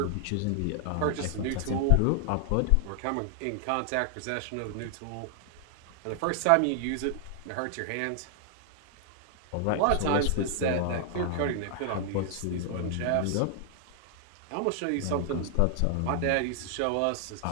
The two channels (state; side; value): different; both; correlation 0.00